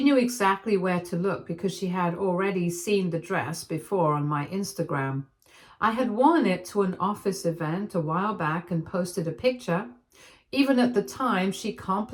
knew exactly where to look because she had already seen the dress before on my Instagram. I had worn it to an office event a while back and posted a picture. Even at the time, she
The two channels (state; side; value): identical; both; correlation 1.00